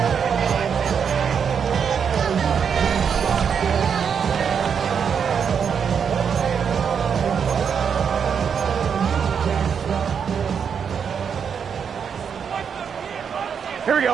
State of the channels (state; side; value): quieter; left; 7.0 dB